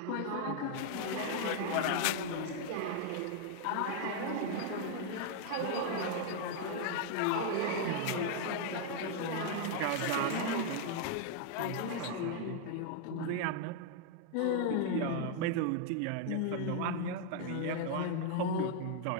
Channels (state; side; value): different; both; correlation 0.00